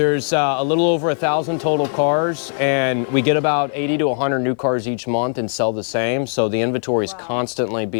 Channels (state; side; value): silent; right; 60 dB below the other